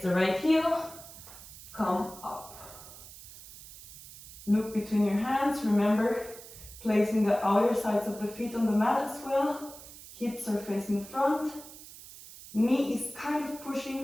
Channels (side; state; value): right; noise; hiss, 16 dB below the sound